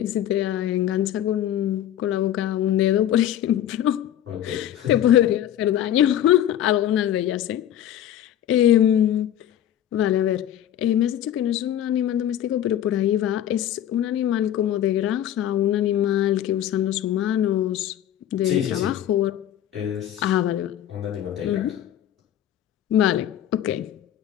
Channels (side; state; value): right; quieter; 11.2 dB